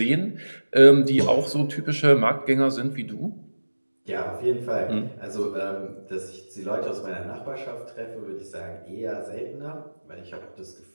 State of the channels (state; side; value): inverted; both; correlation -1.00